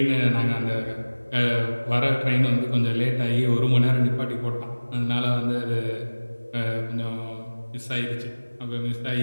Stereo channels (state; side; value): inverted; both; correlation -1.00